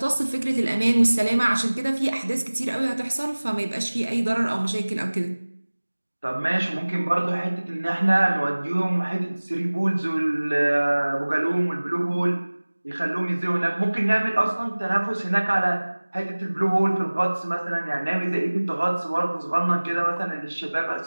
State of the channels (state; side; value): inverted; both; correlation -1.00